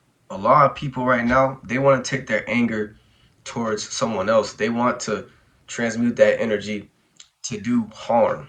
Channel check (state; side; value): identical; both; correlation 1.00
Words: a lot of people right now, they want to take their anger towards someone else. They want to transmute that energy to do harm.